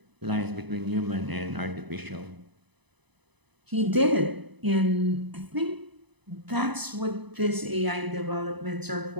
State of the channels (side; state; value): left; late; 0.99 ms